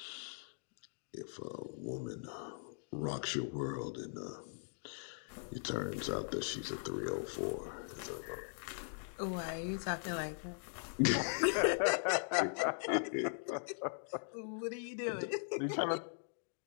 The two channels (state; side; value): silent; right; digital silence